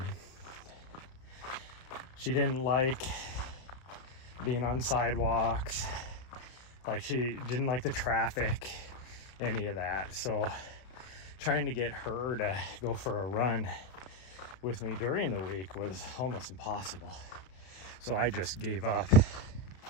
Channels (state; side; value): late; right; 32 ms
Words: She didn't like being on sidewalks. Like, she didn't like the traffic, any of that. So trying to get her to go for a run with me during the week was almost impossible. So I just gave up